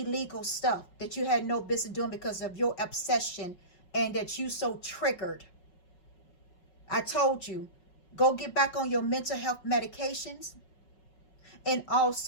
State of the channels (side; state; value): right; late; 5.4 ms